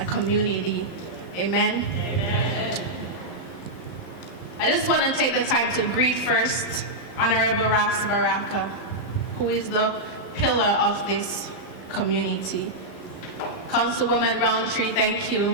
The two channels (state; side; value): late; right; 11 ms